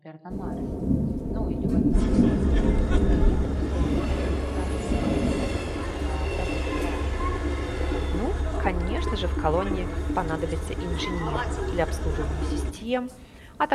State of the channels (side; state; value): both; identical; correlation 1.00